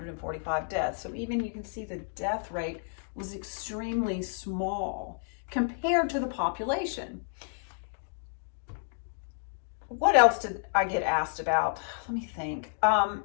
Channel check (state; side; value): silent; right; digital silence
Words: deaths. So even you can see the death rate was extremely small compared to the population. What else did I get asked about? Let me think. Oh,